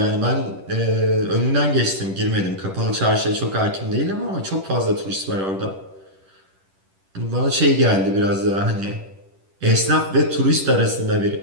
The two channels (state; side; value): late; left; 10 ms